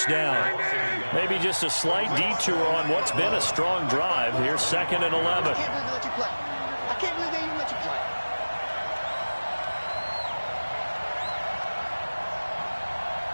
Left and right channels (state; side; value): inverted; both; correlation -1.00